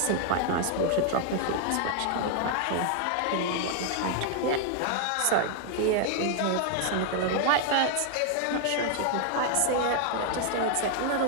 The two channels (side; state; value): both; different; correlation 0.00